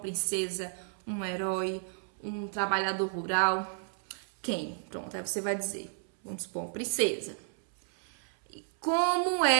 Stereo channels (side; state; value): left; silent; 57 dB below the other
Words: um herói, um trabalhador rural? Quem? Pronto, aí você vai dizer, vamos supor, princesa. E como